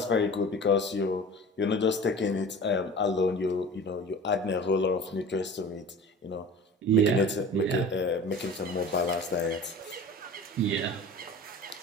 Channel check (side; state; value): both; normal; correlation 0.39